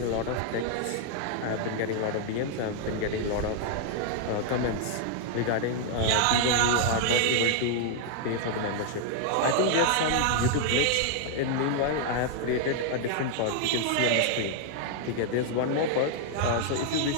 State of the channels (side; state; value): both; different; correlation 0.00